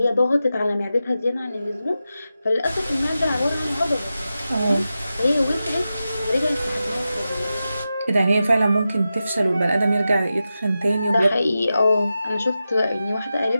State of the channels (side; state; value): both; inverted; correlation -0.91